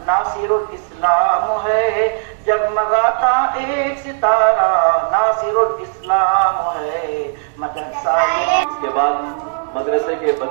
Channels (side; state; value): left; silent; digital silence